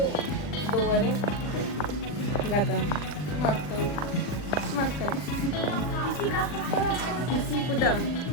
2 ore. Gata. Mă aștept. Pisica asta fără asta. Pisicul, da.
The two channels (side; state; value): right; late; 40 ms